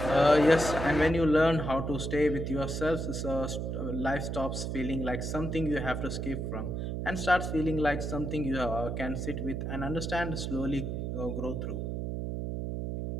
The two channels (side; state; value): right; noise; hum, 3 dB below the sound